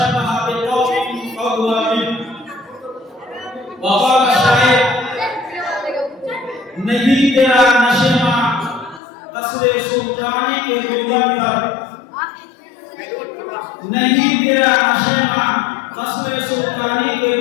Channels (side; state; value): right; drops out; at 9.0 s